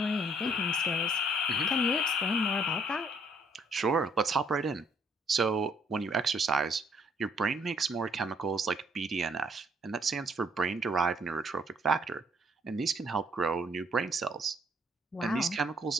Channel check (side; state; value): both; normal; correlation 0.65